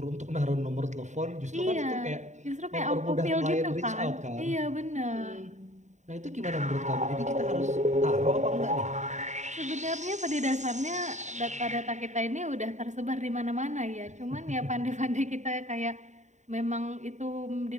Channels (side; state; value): left; late; 0.34 ms